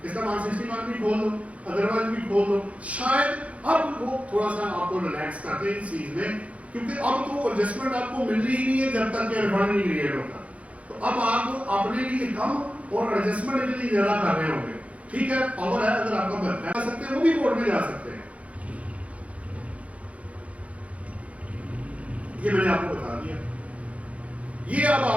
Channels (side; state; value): left; late; 0.065 ms